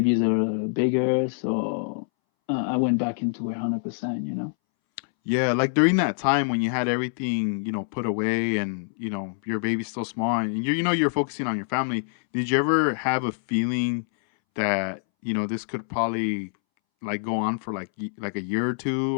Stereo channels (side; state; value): right; silent; 61 dB below the other